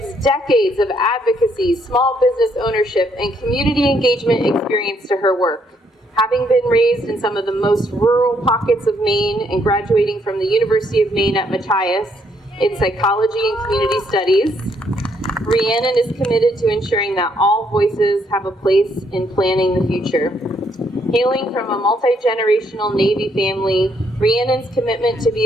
decades of advocacy, small business ownership, and community engagement experience to her work. Having been raised in some of the most rural pockets of Maine and graduating from the University of Maine at Machias in psychology and community studies, Rhiannon is committed to ensuring that all voices have a place in planning the future. Hailing from a multi-generational Navy family, Rhiannon's commitment to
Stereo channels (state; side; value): normal; both; correlation 0.71